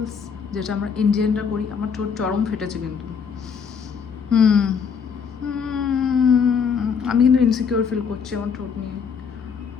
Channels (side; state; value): right; quieter; 6.3 dB